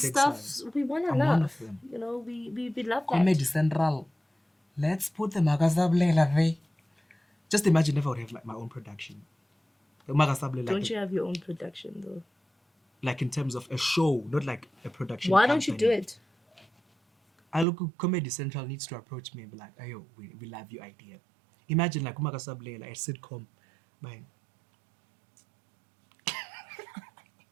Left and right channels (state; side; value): drops out; left; at 17.7 s